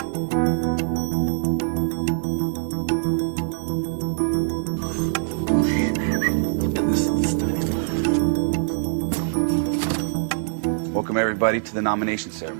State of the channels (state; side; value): silent; left; digital silence